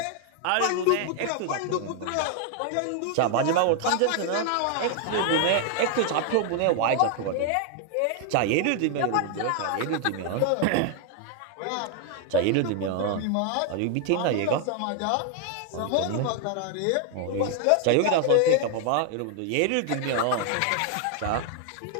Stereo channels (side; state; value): both; different; correlation 0.00